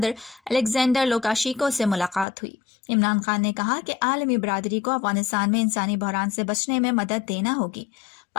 अलेक्जेंडर लुकाशेंको से मुलाकात हुई। इमरान खान ने कहा कि आलमी बरादरी को अफगानिस्तान में इंसानी बहरान से बचने में मदद देना होगी।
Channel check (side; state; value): right; drops out; at 2.2 s